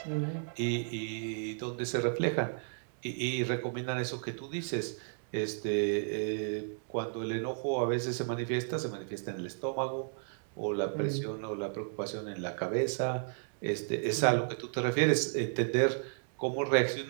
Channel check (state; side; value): silent; left; digital silence